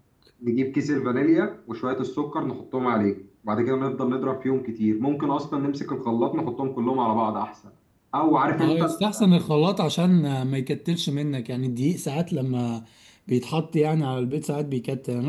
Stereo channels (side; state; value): both; identical; correlation 1.00